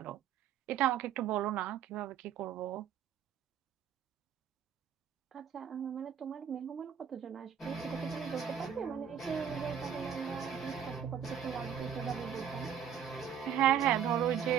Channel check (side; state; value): left; quieter; 8.5 dB